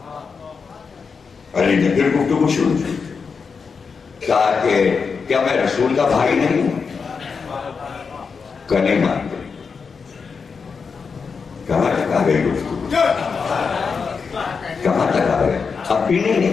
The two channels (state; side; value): quieter; right; 5.4 dB